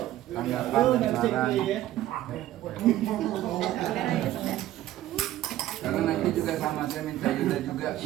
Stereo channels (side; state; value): left; quieter; 14.0 dB